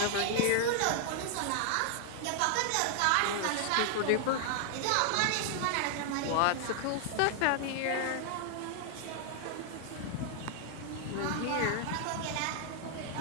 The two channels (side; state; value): both; different; correlation 0.00